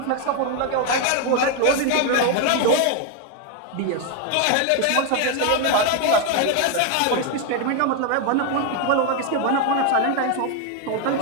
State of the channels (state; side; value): different; both; correlation 0.01